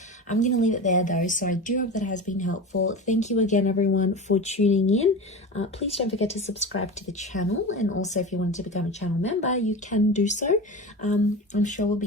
I'm going to leave it there though, so I do hope that has been helpful. Thank you again, everyone, for tuning in. Please don't forget to subscribe to the channel, and also if you wanted to become a channel member, you can do so. I'm sure we'll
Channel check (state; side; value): normal; both; correlation 0.28